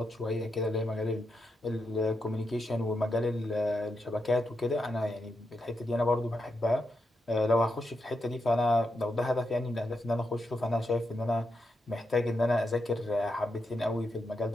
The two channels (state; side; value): normal; both; correlation 0.85